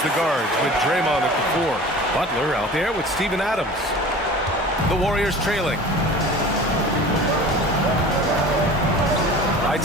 the guards with Draymond at the 4. Butler out there with Steven Adams. The Warriors trailing. Right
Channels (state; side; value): normal; both; correlation 0.40